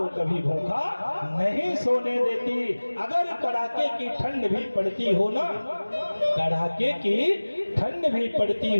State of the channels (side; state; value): both; inverted; correlation -1.00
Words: कभी भूखा नहीं सोने देती। अगर कड़ाके की ठंड भी पड़ती हो ना, कड़ाके की ठंड भी पड़ती